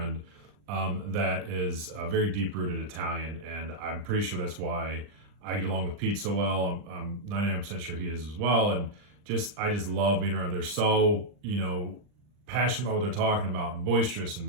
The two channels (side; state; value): left; late; 39 ms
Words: that is very deep rooted Italian. And I'm pretty sure that's why I get along with Pete so well. I'm 99% sure he is as well. And I just love being around. They're so, passionate about what they're talking about and boisterous